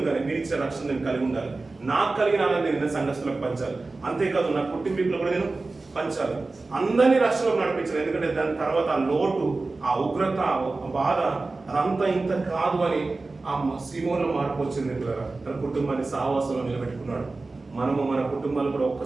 మీరు ఇచ్చే రక్షణ నేను కలిగి ఉండాలి, నాకు కలిగిన ఆనందం నేను సంఘస్థులకు పంచాలి, అంతేకాదు నా కుటుంబీకులు కూడా నేను పంచాలి, అందరినీ రక్షణలో నడిపించాలి. ఎందుకంటే దాని తర్వాత ఆ లోటు, ఆ ఉగ్రత, ఆ బాధ అదంతా ఇంత కాదు అని ఆ సీమోలో మార్పు వచ్చింది పిల్లలు. తన కుటుంబాన్ని సహవాసంలో నిలబెట్టుకున్నాడు. మనము మన కుటుంబాలు కూడా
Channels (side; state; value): left; quieter; 3.5 dB